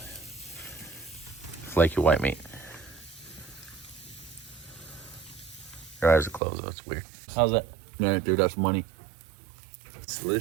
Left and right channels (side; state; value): left; drops out; at 6.4 s